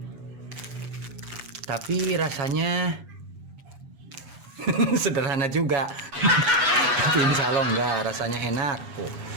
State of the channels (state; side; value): late; left; 8.2 ms